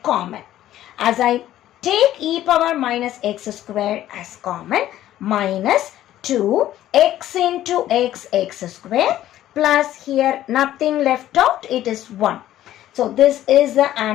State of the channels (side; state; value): right; quieter; 13.1 dB